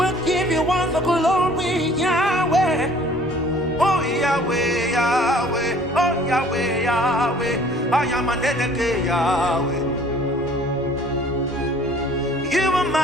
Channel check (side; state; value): both; normal; correlation 0.53